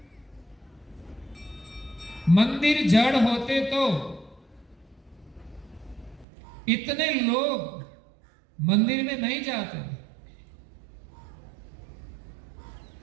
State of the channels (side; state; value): left; drops out; at 6.2 s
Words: मंदिर जड़ होते तो इतने लोग मंदिर में नहीं जाते,